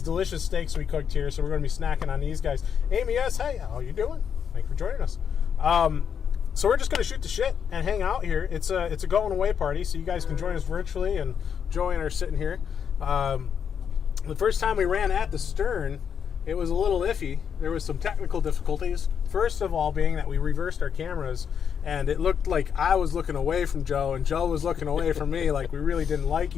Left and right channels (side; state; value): right; quieter; 7.5 dB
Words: delicious steaks we cooked here, so we're going to be snacking on these guys. Amy S., hey, how you doing? Thanks for joining us. So we're just going to shoot the shit and hang out here. It's a going away party, so you guys can join us virtually, and Joey and I are sitting here. The first time we ran at the stern, it was a little iffy. There was some technical difficulties. First of all being that we reversed our cameras, and it looked like I was looking away from Joe, and Joe was looking away from me, like we really didn't like